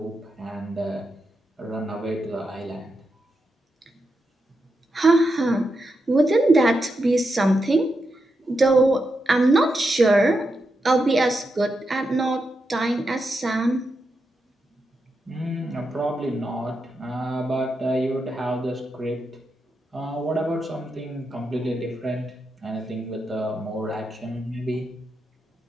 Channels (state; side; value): normal; both; correlation 0.86